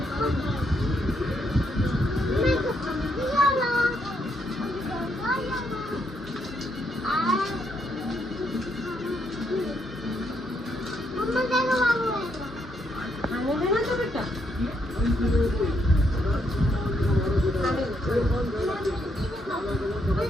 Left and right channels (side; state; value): both; normal; correlation 0.76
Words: खाने देना तो बेटा।